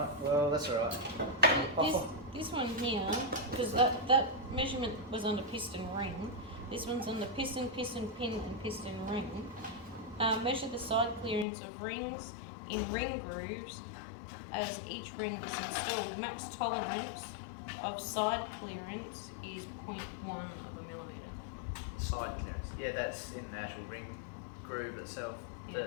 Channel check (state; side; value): drops out; right; at 11.5 s